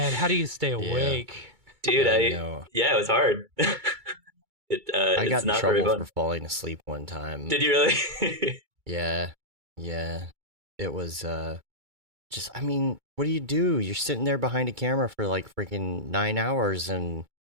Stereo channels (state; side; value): late; left; 2.3 ms